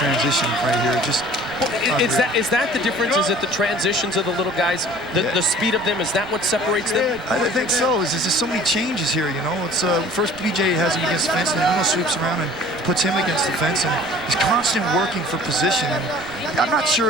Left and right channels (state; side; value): noise; right; rumble, 21 dB below the sound